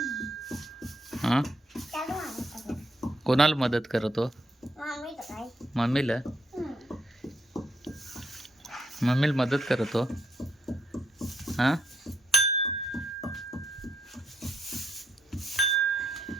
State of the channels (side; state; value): both; normal; correlation 0.75